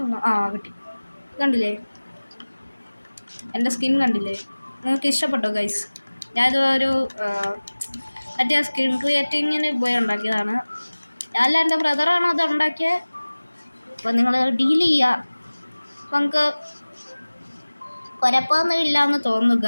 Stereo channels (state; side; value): inverted; both; correlation -1.00